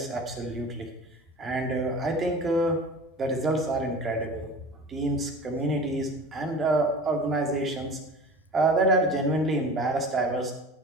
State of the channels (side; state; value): both; normal; correlation 0.37